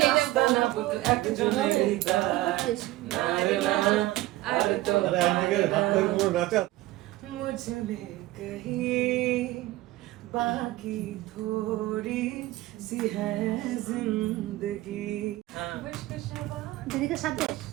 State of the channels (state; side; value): quieter; left; 17.4 dB